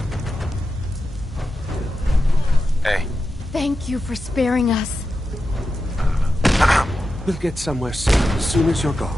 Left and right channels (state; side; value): normal; both; correlation 0.90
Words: Hey. Thank you for sparing us. We'll get somewhere safe as soon as you're